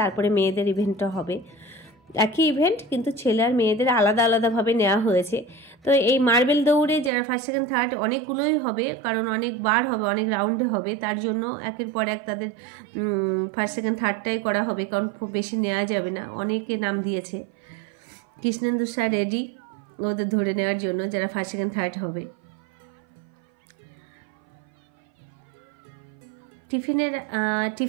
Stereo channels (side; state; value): left; drops out; at 7.1 s